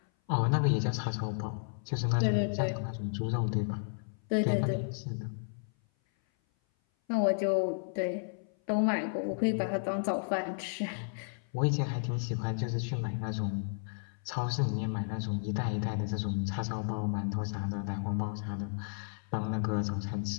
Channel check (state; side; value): silent; right; 55 dB below the other